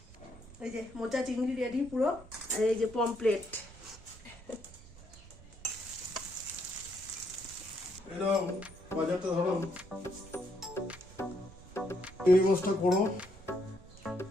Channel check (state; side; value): noise; right; rumble, 19 dB below the sound